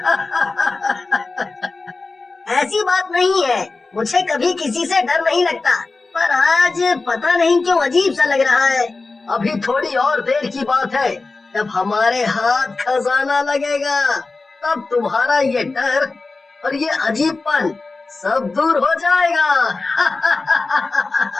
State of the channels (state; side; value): quieter; right; 3.7 dB